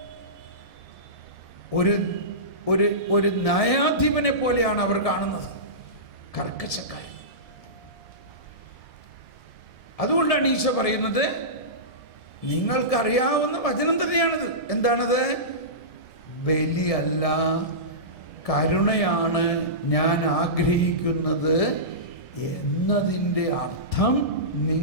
ഒരു ന്യായാധിപനെ പോലെയാണ് അവർ കാണുന്നത്. കർക്കശക്കാരൻ. അതുകൊണ്ടാണ് ഈശോ പറയുന്നത്, നിങ്ങൾക്കറിയാവുന്ന വചനം തന്നെയാണിത്. എന്താണത്? ബലിയല്ല കരുണയാണ് ഞാൻ ആഗ്രഹിക്കുന്നത് എന്നതിൻ്റെ അർത്ഥം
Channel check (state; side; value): late; right; 1.6 ms